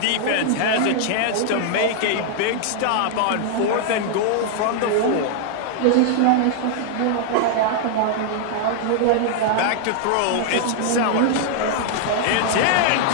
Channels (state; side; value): different; both; correlation -0.01